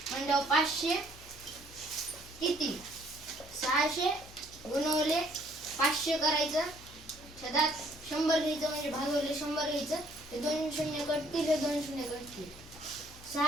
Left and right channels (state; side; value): noise; left; hum, 20 dB below the sound